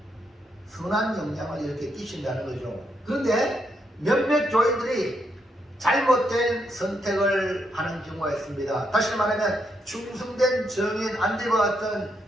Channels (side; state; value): both; normal; correlation 0.78